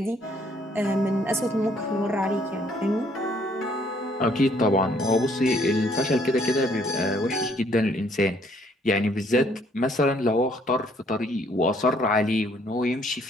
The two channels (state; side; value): normal; both; correlation 0.64